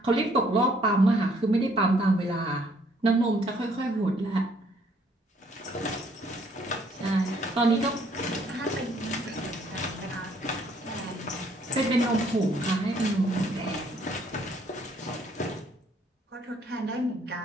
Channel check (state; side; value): normal; both; correlation 0.64